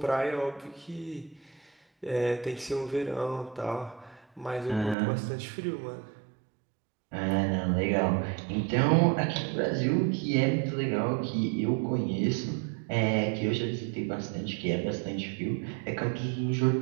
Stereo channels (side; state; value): left; drops out; at 5.0 s